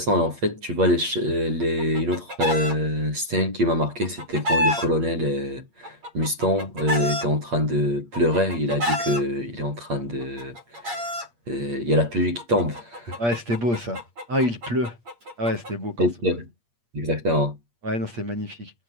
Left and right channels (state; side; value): late; left; 8.5 ms